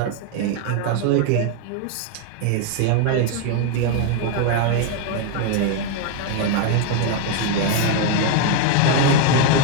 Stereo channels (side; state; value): both; different; correlation 0.01